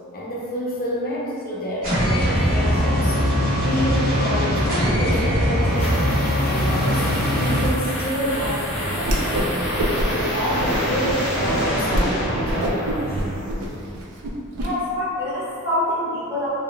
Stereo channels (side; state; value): both; normal; correlation 0.48